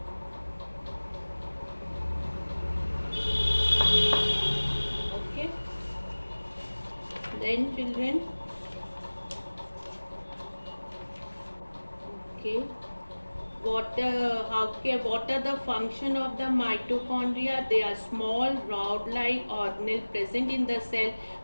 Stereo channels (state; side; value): inverted; both; correlation -1.00